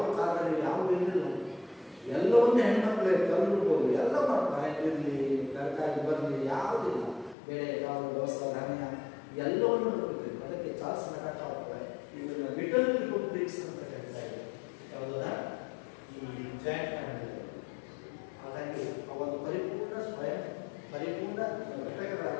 ಕಾಲದಲ್ಲಿ ಯಾವ ಇರಲಿಲ್ಲ. ಎಲ್ಲವನ್ನೇ ಹೆಣ್ಮಕ್ಳೇ ಕಲ್ಬಿಡ್ಬೋದು, ಎಲ್ಲ ಮಾಡ್ತಾರೆ. ಇರಲಿ, ತರಕಾರಿ ಬರಲಿ, ಯಾವುದಿಲ್ಲ. ಬೆಳೆ, ಕಾಳು, ದೋಸ, ಧಾನ್ಯ ಎಲ್ಲವನ್ನು ನೋಡ್ತೀವಿ. ಅದಕ್ಕೆ ಚಾರ್ಲ್ಸ್ ನಗಾಟ ಹೋಗ್ತಾರೆ. ಇದನ್ನ ಲಿಟಲ್ ರಿಪಬ್ಲಿಕ್ಸ್ ಅಂತ ಹೇಳ್ತಾ ಇದೆ. ಯಾವುದರ ಈ ಜಾಯಿಂಟ್ ಫ್ಯಾಮಿಲಿ. ಹಾಗಾಗಿ ಅವನು ಪರಿಪೂರ್ಣ ಸ್ವಯಂ ಪರಿಪೂರ್ಣ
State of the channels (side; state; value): right; drops out; at 7.4 s